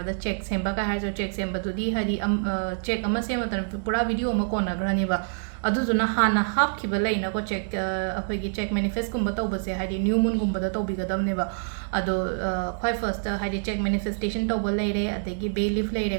चेक सेंबा का हाजो चेक सेंबदुदी हाइदि चेक अमा सेमतन पूरा वीडियो अमा कोनाग्रनिबा अदुजुना हाना हापखिबा लैनाको चेक अखोइगी चेक मैनिफेस्ट कुंबा तौबसे हाइदि न्यू मून गुंबदा तौबिगदबनेबा अदो ख्वाइ फर्स्ट हाइदि चेक मैनिफेस्टेशन तौबा लैरे अदगी बे लीफ लैरे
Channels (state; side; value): silent; left; digital silence